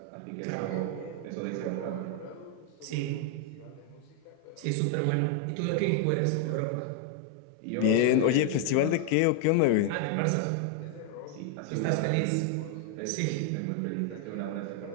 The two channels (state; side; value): different; both; correlation 0.00